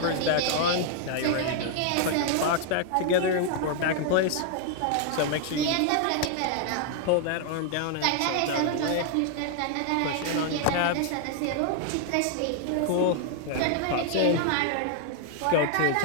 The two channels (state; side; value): different; both; correlation 0.00